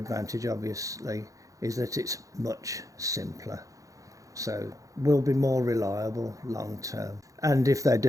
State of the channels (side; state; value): left; late; 0.16 ms